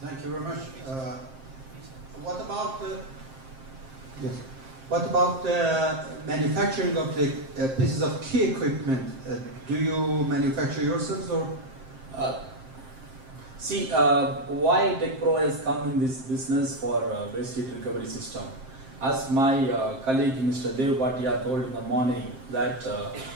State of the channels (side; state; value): left; late; 7.5 ms